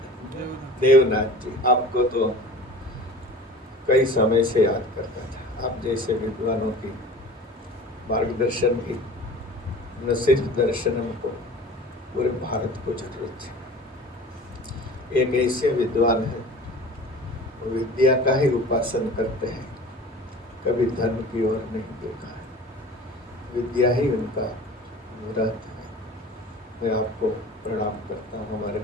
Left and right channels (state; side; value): normal; both; correlation 0.40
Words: देवनाथ जी, आपको तो कई समय से याद करता था। आप जैसे विद्वानों की मार्गदर्शन की न सिर्फ दर्शनम को, पूरे भारत को जरूरत थी। एक ऐसे विद्वान है, वो विद्या का ही उपासन करते हैं, कभी धन की ओर नहीं देखा है, विद्या ही उनका व्रत है। मैं आपको प्रणाम करता हूँ। हमारे